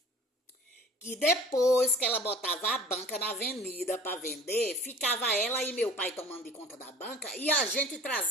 que depois que ela botava a banca na avenida para vender, ficava ela e meu pai tomando de conta da banca e a gente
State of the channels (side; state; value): both; normal; correlation 0.45